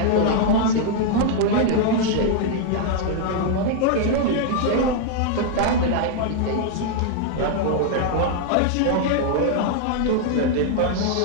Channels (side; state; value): both; different; correlation 0.00